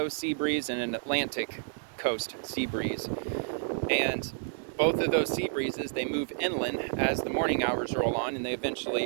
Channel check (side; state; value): left; silent; digital silence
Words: sea breeze and an Atlantic Coast sea breeze. And both of those sea breezes, they move inland as the morning hours roll on, and they